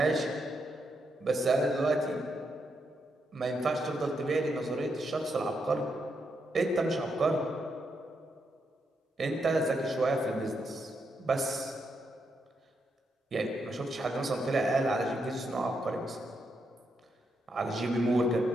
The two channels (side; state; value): both; normal; correlation 0.81